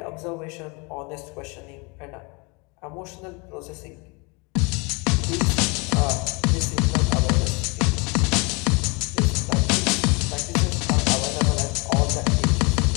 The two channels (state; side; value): quieter; right; 29.3 dB